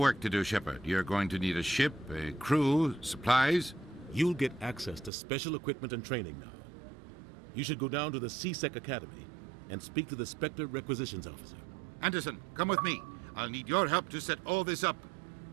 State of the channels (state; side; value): drops out; left; at 5.1 s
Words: to do, Shepard. You're going to need a ship, a crew, supplies. You'll get access to special equipment and training now. You should go down to the C-Sec Academy and speak to the Spectre Requisitions Officer. Anderson, come with me. I'll need your help to set all this up.